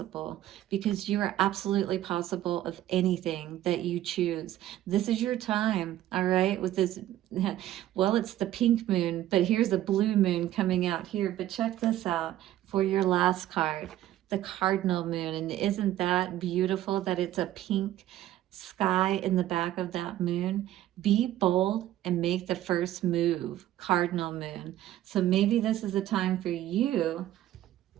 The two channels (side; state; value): left; quieter; 13.4 dB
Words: because you are absolutely possible of anything that you choose. This is your time, all right, with this, well, it's the pink moon, but here's a blue moon coming out here. But check this out for your last card, the Cardinal Moon. And isn't that beautiful that it's a pink sky in the back of that moon? Be bold and make the first move, Cardinal Moon. So maybe this is a time for you.